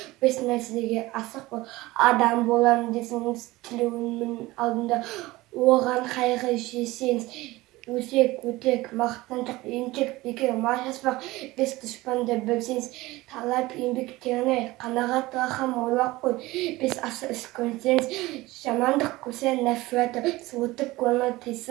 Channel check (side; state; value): left; quieter; 19.5 dB